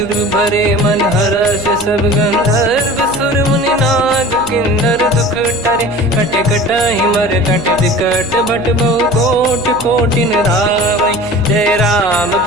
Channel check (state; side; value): noise; left; hum, 18 dB below the sound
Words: भरे मन हर्ष सब गंधर्व सुर मुनि नाग किन्नर दुख टरे कट कटाही मर कट विकट भट बहु कोट कोटिन रावै जय राम